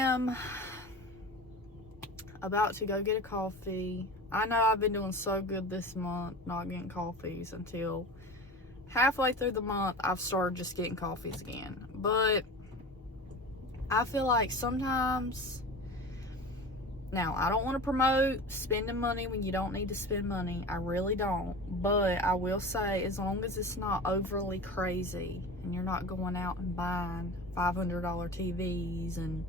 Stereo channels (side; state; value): both; normal; correlation 0.33